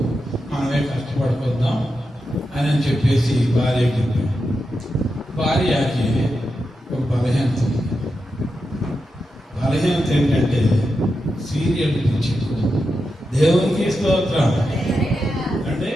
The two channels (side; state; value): both; normal; correlation 0.88